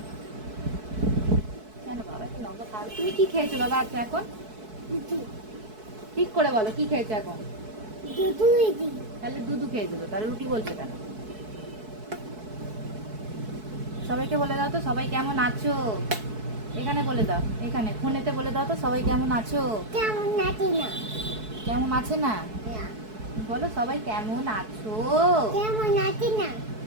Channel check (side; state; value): left; late; 4.6 ms